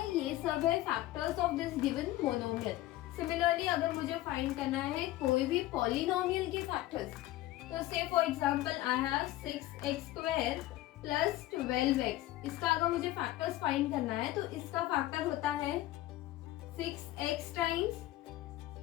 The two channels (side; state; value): right; quieter; 15.8 dB